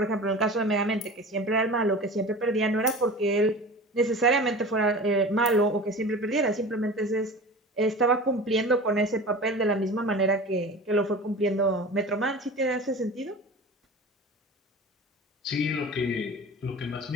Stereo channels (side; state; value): both; normal; correlation 0.35